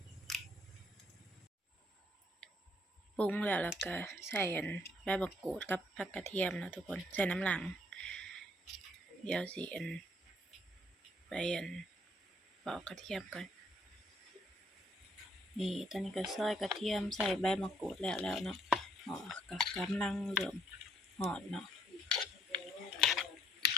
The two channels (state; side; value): normal; both; correlation 0.67